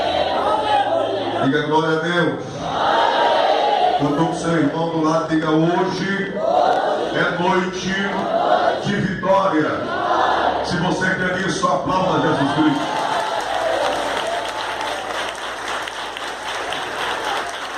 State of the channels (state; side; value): identical; both; correlation 1.00